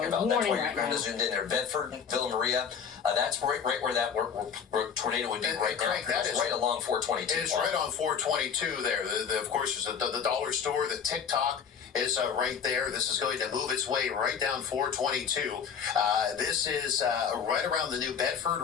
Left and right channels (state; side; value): quieter; right; 7.1 dB